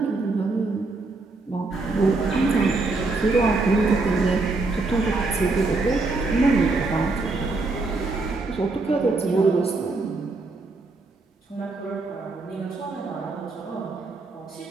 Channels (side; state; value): left; quieter; 3.5 dB